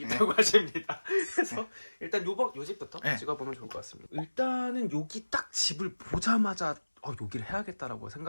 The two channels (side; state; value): both; inverted; correlation -1.00